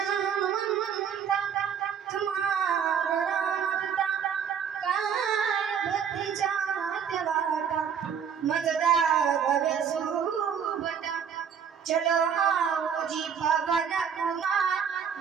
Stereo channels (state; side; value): quieter; left; 7.5 dB